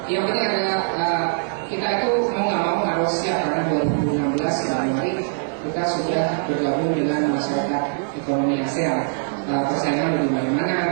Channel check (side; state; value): left; silent; 56 dB below the other